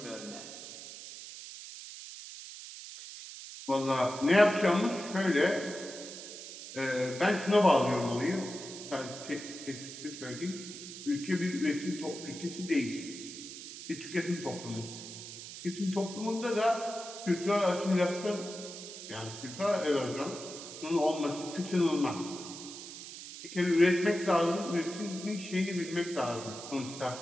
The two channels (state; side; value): noise; right; hiss, 12 dB below the sound